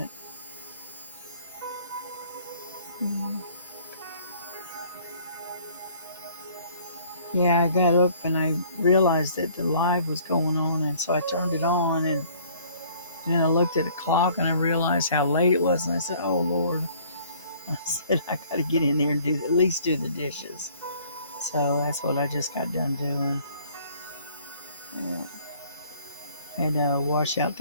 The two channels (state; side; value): inverted; both; correlation -0.56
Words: Mm. Yeah, I got up and I realized that the live was going on, and so I turned it on, and then I looked at the clock and I realized how late it was, and I said, "Oh Lord!" I said I got to get in there and do at least do the dishes. So that's what I just got done doing. Yeah. Had to wash out